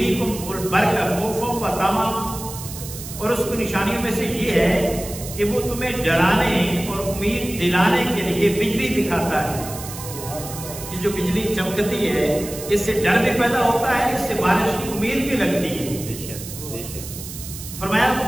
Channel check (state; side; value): noise; right; hiss, 11 dB below the sound